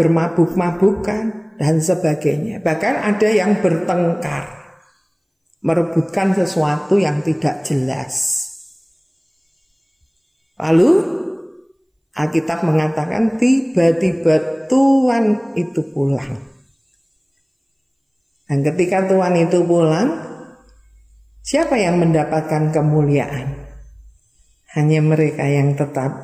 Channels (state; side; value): identical; both; correlation 1.00